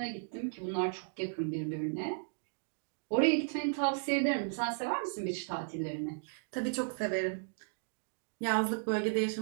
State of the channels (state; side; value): silent; left; digital silence